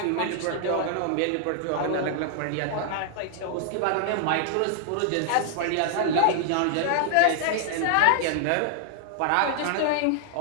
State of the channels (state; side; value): different; both; correlation 0.00